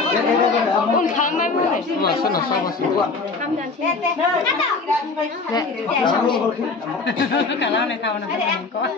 Un kamar mana? Sana sama sih. Kamdan sini. Kalau nak tahu nak kau.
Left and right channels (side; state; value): right; quieter; 4.1 dB